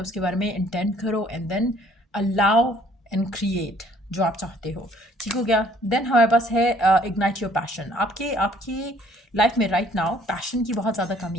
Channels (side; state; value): both; normal; correlation 0.60